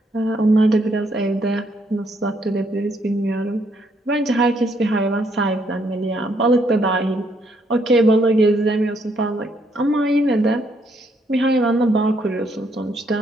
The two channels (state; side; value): normal; both; correlation 0.72